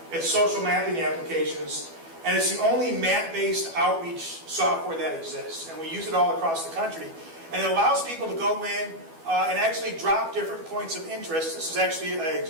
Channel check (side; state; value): left; late; 12 ms